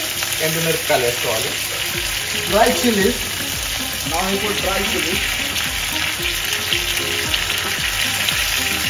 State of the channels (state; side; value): identical; both; correlation 1.00